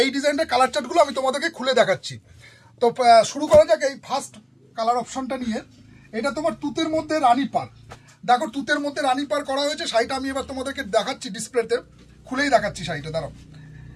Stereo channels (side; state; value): both; identical; correlation 1.00